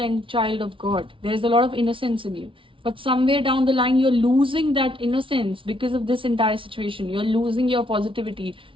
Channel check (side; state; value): left; late; 0.25 ms